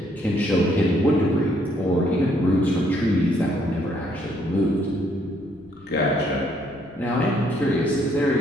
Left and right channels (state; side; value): noise; left; rumble, 29 dB below the sound